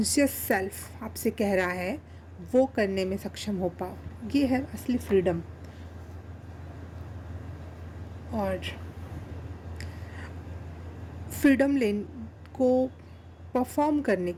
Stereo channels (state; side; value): identical; both; correlation 1.00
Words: सेल्फ आपसे कह रहा है, वो करने में सक्षम हो पाओ। ये है असली फ्रीडम। और फ्रीडम को परफॉर्म करने